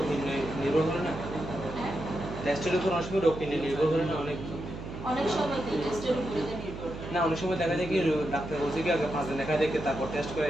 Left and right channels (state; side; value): noise; right; hum, 9 dB below the sound